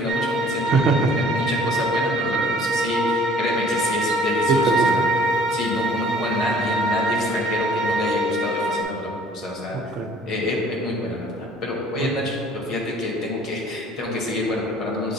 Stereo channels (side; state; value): both; normal; correlation 0.53